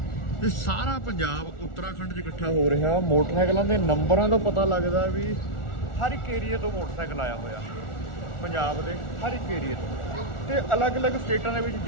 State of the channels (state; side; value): late; right; 1.4 ms